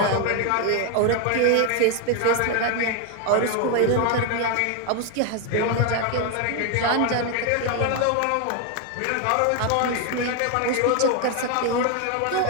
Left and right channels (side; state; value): both; different; correlation 0.01